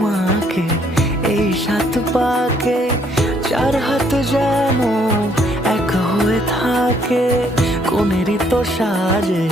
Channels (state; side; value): normal; both; correlation 0.67